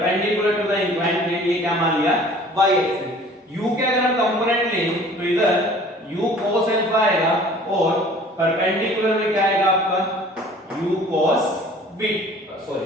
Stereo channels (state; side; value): normal; both; correlation 0.49